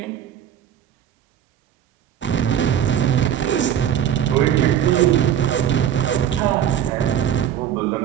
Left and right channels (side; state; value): left; quieter; 9.8 dB